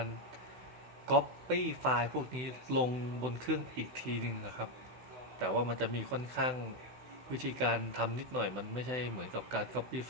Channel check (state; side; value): late; left; 16 ms